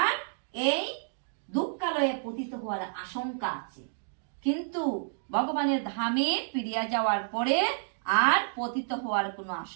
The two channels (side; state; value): left; silent; digital silence